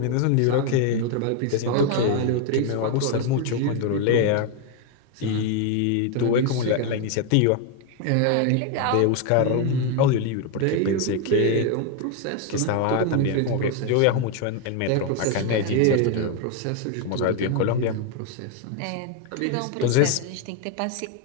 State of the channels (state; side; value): different; both; correlation 0.01